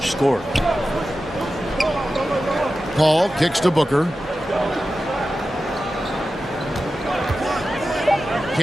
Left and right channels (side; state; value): both; normal; correlation 0.93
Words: scorer. Paul kicks to Booker.